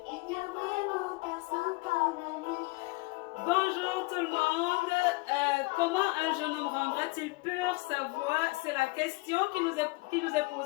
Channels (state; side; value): quieter; right; 25.1 dB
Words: Il n'y a vraiment personne comme lui. Bonjour tout le monde. Comment un jeune homme rendra-t-il pure sa voix? C'est la question qui nous est